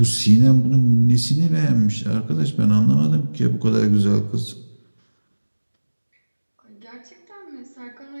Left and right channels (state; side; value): inverted; both; correlation -1.00